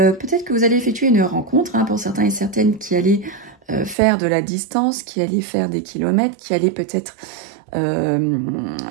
que vous allez effectuer une rencontre, hein, pour certains et certaines qui allaient faire de la distance, qui allaient faire des kilomètres, qui allaient peut-être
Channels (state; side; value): drops out; left; at 4.0 s